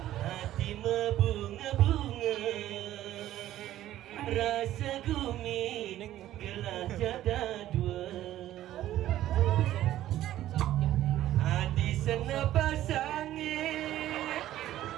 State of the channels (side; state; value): left; quieter; 13.4 dB